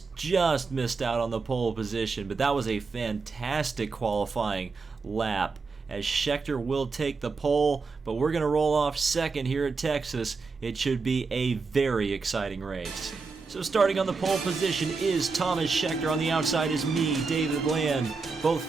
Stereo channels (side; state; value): left; quieter; 4.5 dB